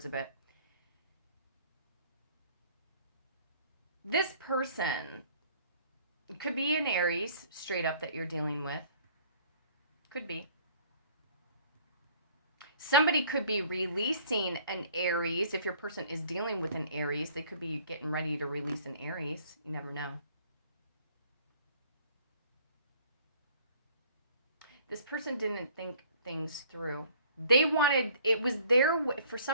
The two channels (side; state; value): both; inverted; correlation -0.55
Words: a bit. This person could be an Aries, straight up, that you're dealing with. Could be. Somebody could be releasing an Aries. If your person is dealing with an Aries, they could be getting ready to release an Aries. You never know. This person didn't think things through. They wanted, it was their way. For